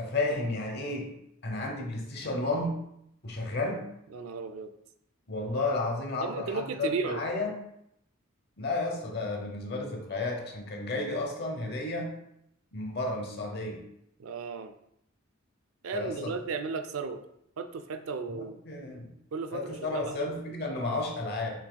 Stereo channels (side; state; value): both; normal; correlation 0.09